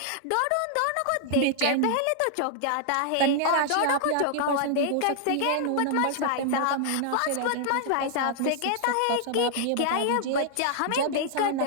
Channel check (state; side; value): different; both; correlation -0.01